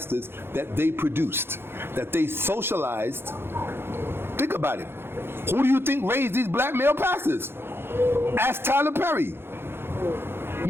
that they produced, that they socialized. Think about it. Who do you think raised these black male pastors? Ask Tyler Perry.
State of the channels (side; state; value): left; late; 0.11 ms